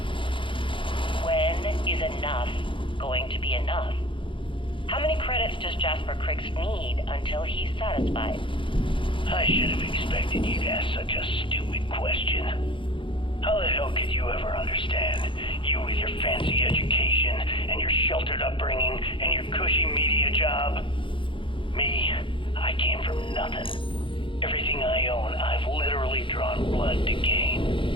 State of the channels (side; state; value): right; late; 0.25 ms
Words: When is enough going to be enough? How many credits does Jasper Criggs need until he's satisfied? I should have expected you to ask such a stupid question. How the hell could you ever understand? You with your fancy education, and your sheltered upbringing, and your cushy media job. Me, I came from nothing. Everything I own, I've literally drawn blood to gain.